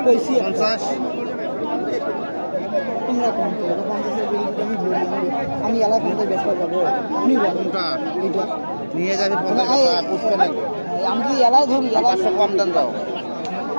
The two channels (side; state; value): both; inverted; correlation -1.00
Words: কইছি 50 তোমরা কোন তো এটা 50 এর বিল আমি ধরি আমি এলা কিনতে বেচতে যাবো আপনি বলেন কোনটা এটা নিয়ে যাবে 50 টাকা পুষতে লাগবে আমি কি এলাই ধরি এলা 500 কম দেন দাও